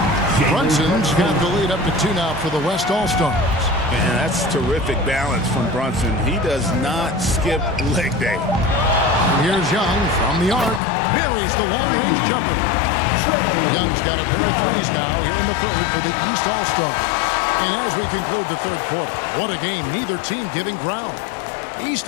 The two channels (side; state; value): right; drops out; at 10.8 s